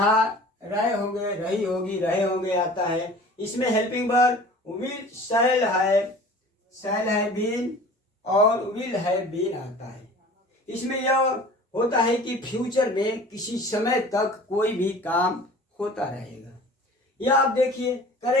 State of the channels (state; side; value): normal; both; correlation 0.43